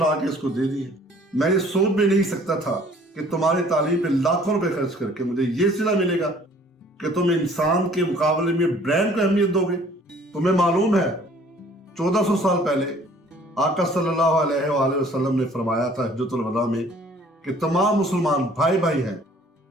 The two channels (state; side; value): normal; both; correlation 0.55